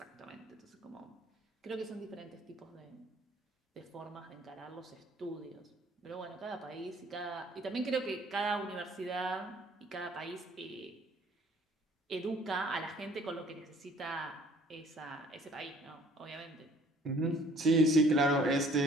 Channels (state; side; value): normal; both; correlation 0.56